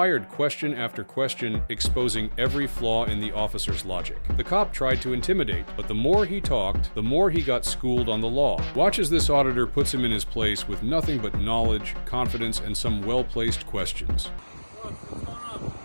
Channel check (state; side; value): inverted; both; correlation -1.00